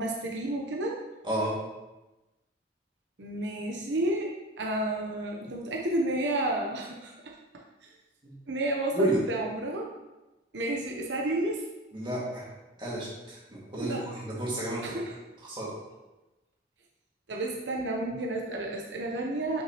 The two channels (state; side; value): normal; both; correlation 0.31